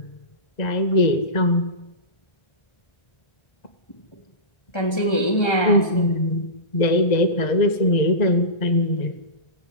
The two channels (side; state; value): right; late; 1.3 ms